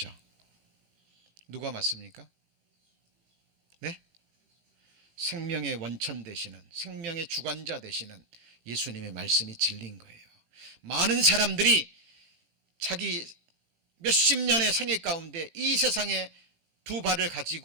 누가 맞습니까? 네? 생명의 원천 되시는, 생명의 주관자 되시는 예수님의 말씀이 진리인 거예요. 많은 사람들이 자기 몇십 년의 생애 가운데 이 세상에 두 발을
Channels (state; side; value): late; left; 18 ms